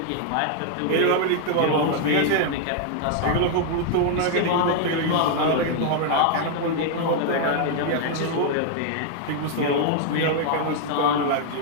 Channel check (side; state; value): both; different; correlation 0.00